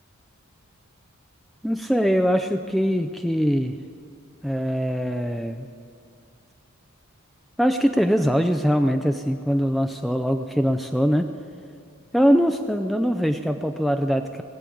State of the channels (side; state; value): both; normal; correlation 0.94